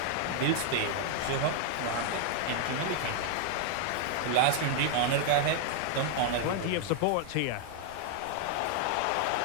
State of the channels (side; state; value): both; different; correlation 0.00